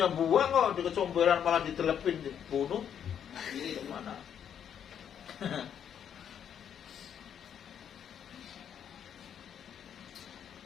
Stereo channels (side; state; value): right; quieter; 8.7 dB